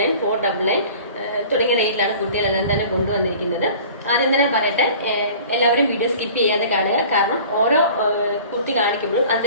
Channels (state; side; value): inverted; both; correlation -0.45